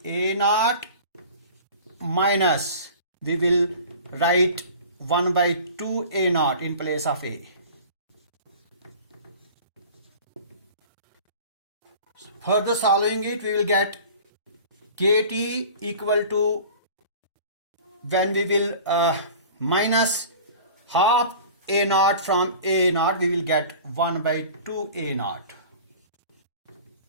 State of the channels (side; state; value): both; inverted; correlation -0.41